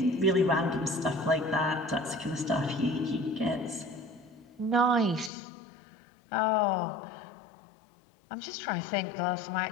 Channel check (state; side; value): drops out; right; at 5.3 s